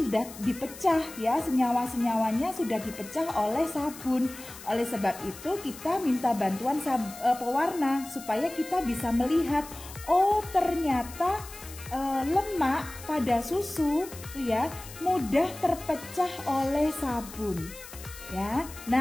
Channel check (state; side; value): noise; left; hiss, 15 dB below the sound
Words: dipecah, ya. Senyawa-senyawanya sudah dipecah oleh sabun. Oleh sebab itu, kita minta bantuan pewarna supaya kita bisa melihat, oh ternyata lemak pada susu, ya, mudah terpecah oleh sabun, ya.